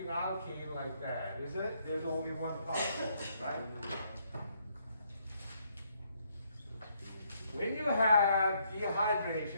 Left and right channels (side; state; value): both; inverted; correlation -0.72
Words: alkene like that, is it? There's only one particle, right? When you have